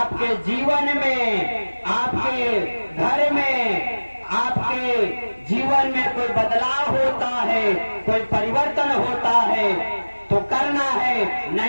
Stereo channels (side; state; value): both; inverted; correlation -1.00